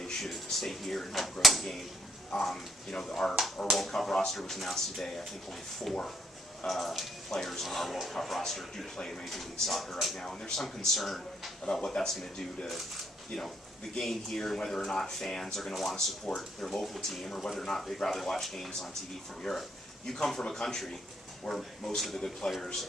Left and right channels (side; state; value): both; normal; correlation 0.70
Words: should stay here and help grow the game. You know, our World Cup roster was announced today. I think only 4 players on our World Cup roster do play in Major League Soccer right now, and there's some concern about what that's going to do to, you know, the game here, and whether or not fans are going to want to support their local team, or whether or not they'd rather watch games on TV from Europe. You come from a country where most of the good players